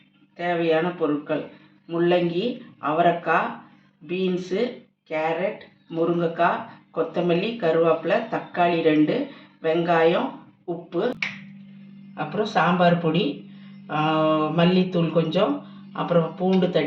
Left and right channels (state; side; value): identical; both; correlation 1.00